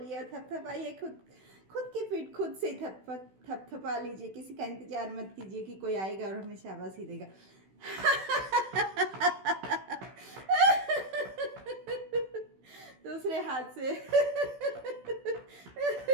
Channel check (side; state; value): left; late; 16 ms